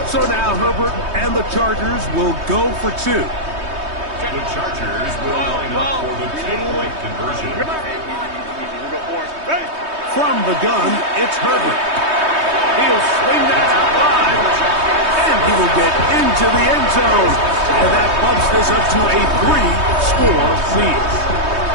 So now Herbert and the Chargers will go for 2. The Chargers will line up for the 2-point conversion. From the gun, it's Herbert. He'll swing that out wide, and he will get into the end zone. And that bumps this up to a 3-score lead.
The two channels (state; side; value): late; left; 3.2 ms